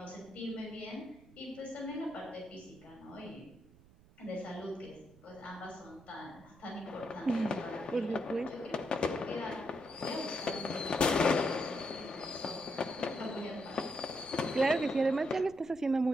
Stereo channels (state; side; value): noise; right; rumble, 25 dB below the sound